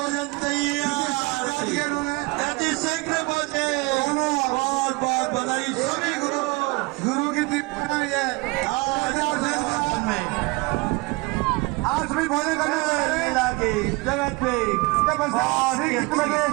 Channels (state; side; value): quieter; left; 25.3 dB